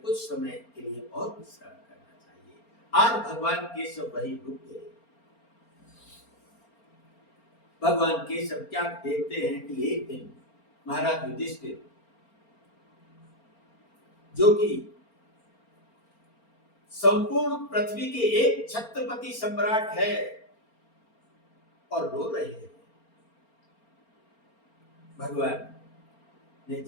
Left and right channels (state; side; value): late; right; 4.4 ms